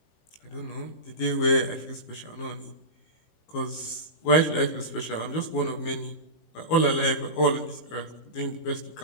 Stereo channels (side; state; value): right; late; 19 ms